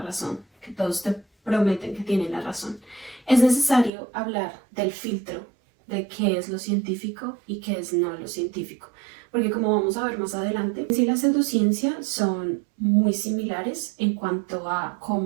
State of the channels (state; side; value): drops out; left; at 3.9 s